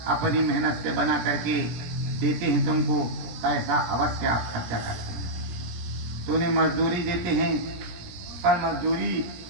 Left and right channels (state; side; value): late; left; 17 ms